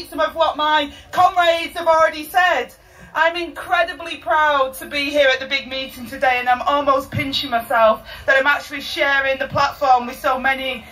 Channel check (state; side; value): identical; both; correlation 1.00